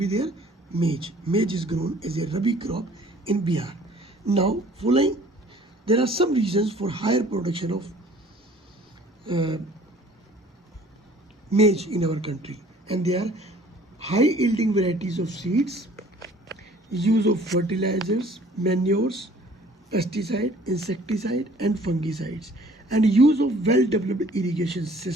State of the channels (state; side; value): normal; both; correlation 0.53